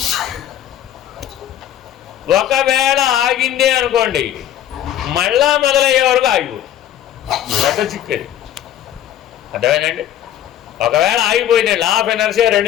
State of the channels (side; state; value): right; quieter; 11.2 dB